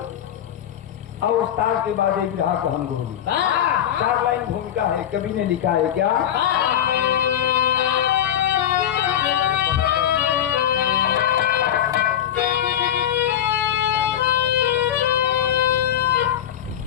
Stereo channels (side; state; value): right; quieter; 10.6 dB